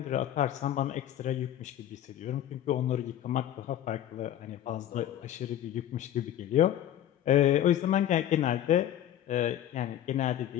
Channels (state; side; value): quieter; right; 11.6 dB